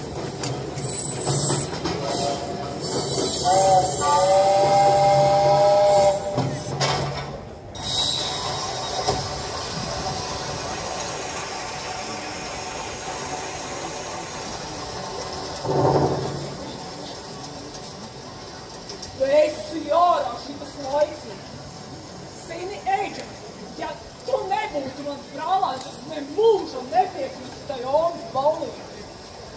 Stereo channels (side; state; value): both; identical; correlation 1.00